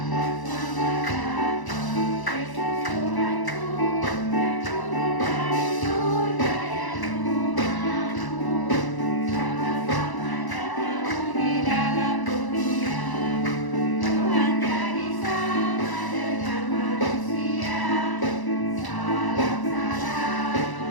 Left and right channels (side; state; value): right; late; 1.0 ms